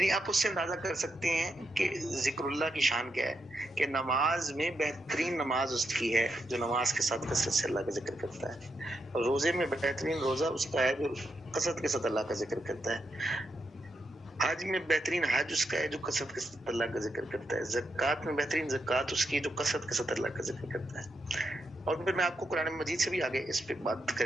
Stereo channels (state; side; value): normal; both; correlation 0.83